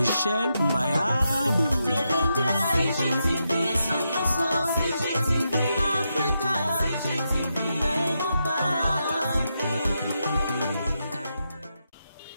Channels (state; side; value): inverted; both; correlation -0.85